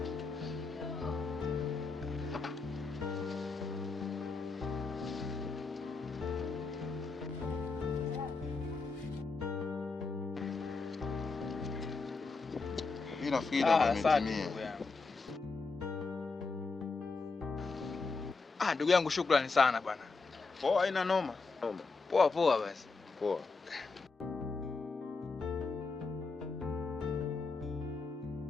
Mimi nafikiri umetimia. Ndugu yangu, shukrani sana bwana. Poa, haina noma. Poa basi. Poa.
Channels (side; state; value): right; quieter; 4.1 dB